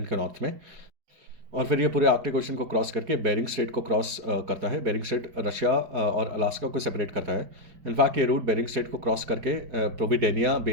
के नॉर्थ में, और फिर ये पूरे आर्कटिक ओशन को क्रॉस करके बेरिंग स्ट्रेट को क्रॉस करता है। बेरिंग स्ट्रेट रशिया और अलास्का को सेपरेट करता है। इनफैक्ट ये रूट बेरिंग स्ट्रेट को क्रॉस करके प्रोविडेनिया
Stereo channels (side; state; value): left; late; 4.9 ms